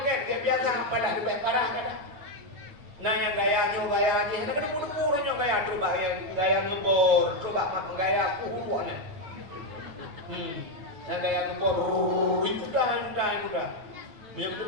dia biasa apalah lebih parah kan. Nah yang gaya aja hanya kena pura-pura gaya coba gaya ngebor, coba gaya kuhuan. Yang gaya ngebor itu dah. Yang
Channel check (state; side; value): late; left; 8.9 ms